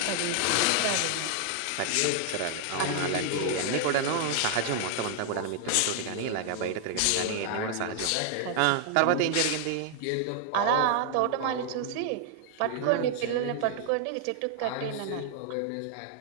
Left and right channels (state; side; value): different; both; correlation 0.00